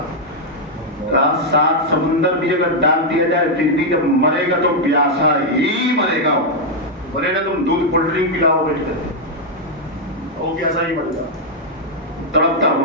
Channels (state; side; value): normal; both; correlation -0.02